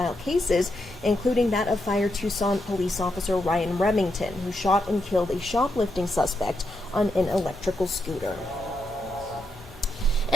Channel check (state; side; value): normal; both; correlation 0.83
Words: cases, including that of Fire Tucson police officer Ryan Remington, who shot and killed a shoplifting suspect on an electrical scooter.